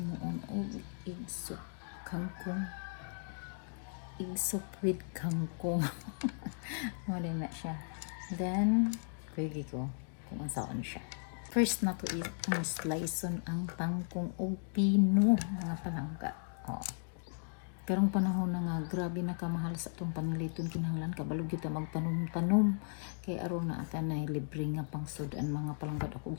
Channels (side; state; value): right; silent; digital silence